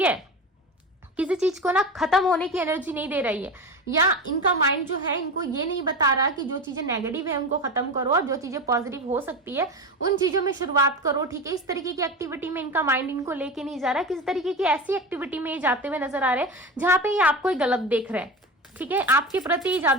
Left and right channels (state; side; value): normal; both; correlation 0.24